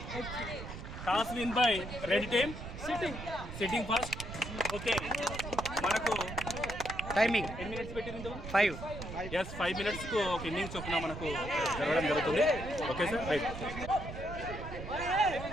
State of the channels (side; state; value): right; noise; rumble, 9 dB below the sound